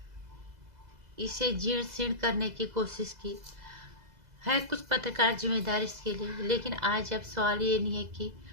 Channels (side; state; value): left; late; 2.0 ms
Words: इसे जीर्ण शीर्ण करने की कोशिश की है, कुछ पत्रकार जिम्मेदार इसके लिए। लेकिन आज अब सवाल ये नहीं है कि